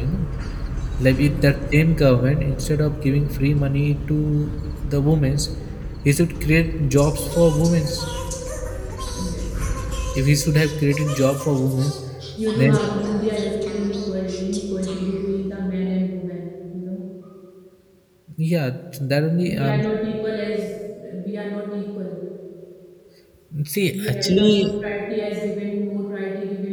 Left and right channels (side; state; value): both; identical; correlation 1.00